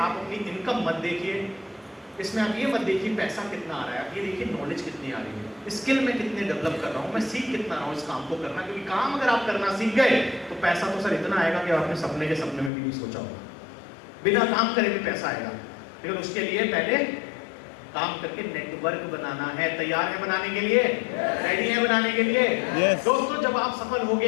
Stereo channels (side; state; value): right; drops out; at 12.7 s